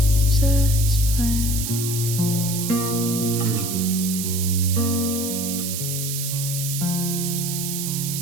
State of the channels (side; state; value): right; noise; hiss, 4 dB below the sound